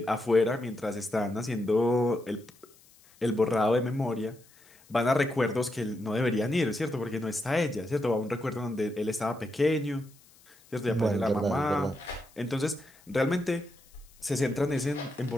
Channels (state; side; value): noise; left; hiss, 28 dB below the sound